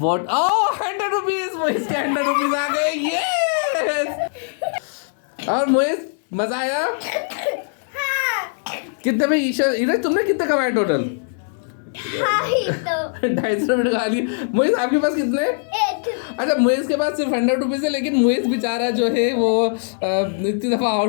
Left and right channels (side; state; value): right; silent; digital silence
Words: 100 रुपीज, मोहित के 100 रुपीज आ गए, यस। और मोहित मजा आया? कितने में ईशा तुमने कितने कमाए टोटल? 250 रुपये खा लिए। मोहित आपके पास कितने? अच्छा मोहित के पास सिर्फ 100 रुपीज है, लेकिन मोहित बेचारा जो है वो इतनी दफा